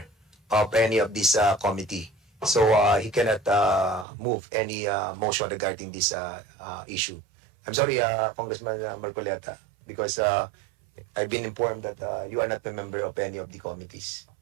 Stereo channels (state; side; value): drops out; left; at 4.0 s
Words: of any of this committee. So he cannot move any motion regarding this issue. I'm sorry, Congressman Marcoleta, because I've been informed that you are not a member of any of the committees.